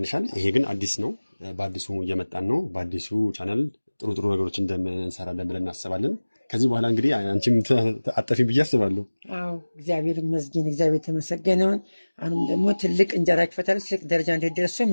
ይሄ ግን አዲስ ነው። በአዲሱ እየመጣን ነው። በአዲሱ ቻናል ጥሩ ነገሮች እንደምንሰራለን ብለን እናስባለን። ከዚህ በኋላ እንግዲህ አንቺም አጠፊ ብዬ አስባለሁ። አዎ እግዚአብሔር ይመስገን፣ እግዚአብሔር የተመሰገነውን። አሁንም ደግሞ ትልቅ እንጀራ ይክፈታል፣ ትልቅ ደረጃ እንዲደርሱ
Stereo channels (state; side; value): inverted; both; correlation -1.00